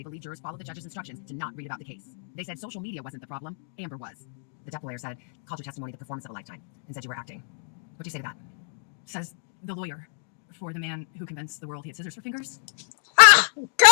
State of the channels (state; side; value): silent; right; digital silence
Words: believe jurors followed the judge's instructions to not read about the case. They said social media wasn't the problem, Amber was. The Depp lawyer said, called your testimony the performance of a lifetime, and said you were acting. What do you say to that? Says the lawyer for the man who convinced the world he had scissors for fingers. Ah!